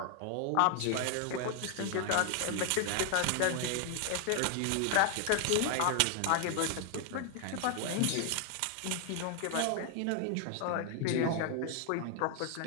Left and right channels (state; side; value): different; both; correlation 0.01